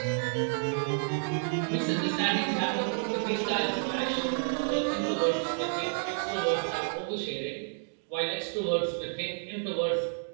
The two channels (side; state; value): left; silent; digital silence